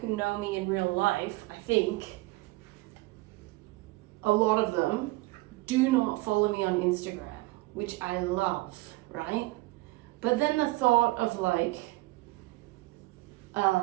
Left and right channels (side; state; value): left; quieter; 21.3 dB